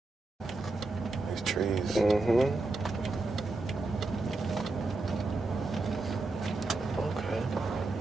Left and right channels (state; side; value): quieter; left; 3.2 dB